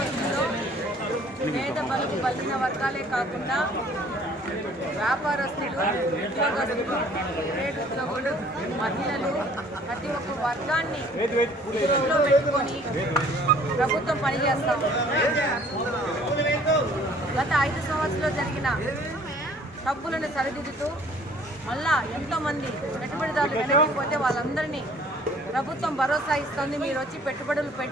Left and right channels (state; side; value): normal; both; correlation 0.55